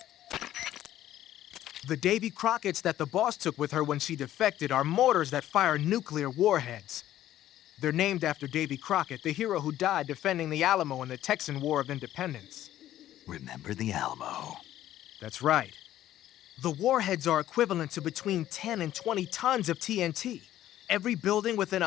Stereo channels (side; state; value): right; quieter; 12.9 dB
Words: The Davy Crockett's that the boss took with her when she defected are mortars that fire nuclear warheads. They're named after Davy Crockett, the hero who died defending the Alamo in the Texan War of Independence. Remember the Alamo. That's right. The warheads are equivalent to between 10 and 20 tons of TNT. Every building within